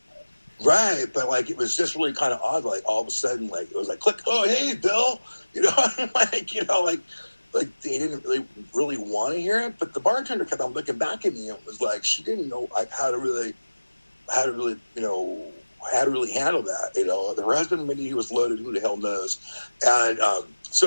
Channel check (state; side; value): inverted; both; correlation -1.00